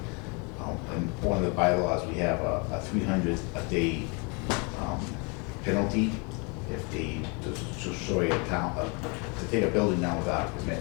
in one of the bylaws, we have a 300 a day penalty if they destroy a town, to take a building down without a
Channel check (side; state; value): right; quieter; 32.3 dB